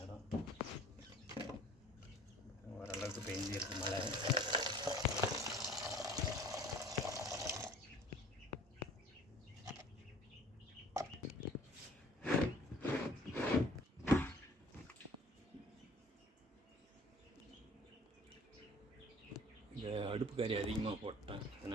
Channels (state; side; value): normal; both; correlation 0.50